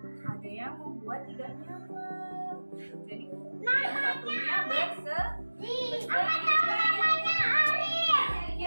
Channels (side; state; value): both; inverted; correlation -1.00